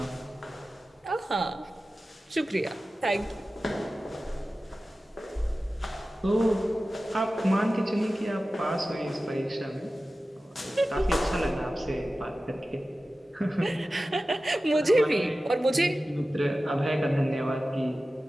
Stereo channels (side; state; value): both; normal; correlation 0.95